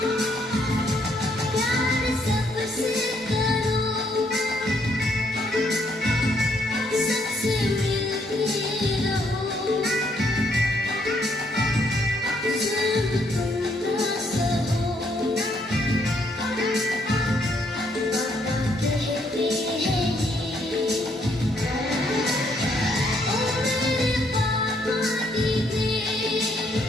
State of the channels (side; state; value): both; normal; correlation 0.71